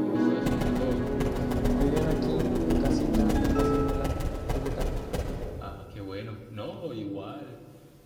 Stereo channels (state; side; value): identical; both; correlation 1.00